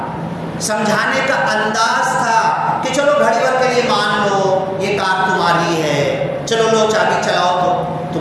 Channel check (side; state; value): both; identical; correlation 1.00